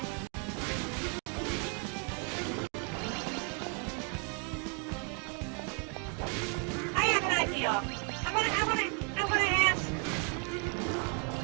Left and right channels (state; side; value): quieter; left; 38.2 dB